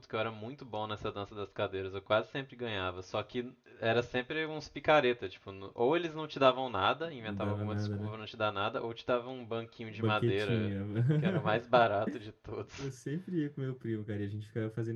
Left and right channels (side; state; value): both; identical; correlation 1.00